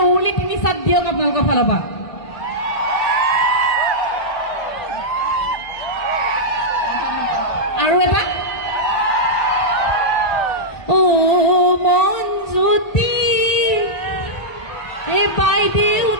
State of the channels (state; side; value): late; right; 1.8 ms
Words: উৰুলি 3 চাত দিয়ক আপোনালোকৰ ফালৰ পৰা আৰু এটা অ মন জ্যোতি এই